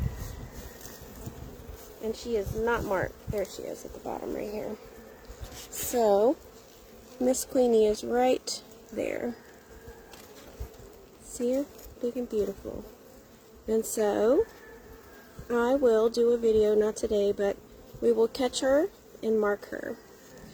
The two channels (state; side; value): identical; both; correlation 1.00